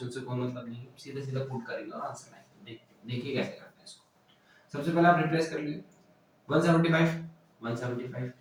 से कोई मतलब नहीं है, सीधे सीधा पुट करेंगे और आंसर आएगा। देखिए कैसे करते हैं इसको। सबसे पहले आप रिप्लेस कर लीजिए 175 175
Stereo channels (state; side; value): identical; both; correlation 1.00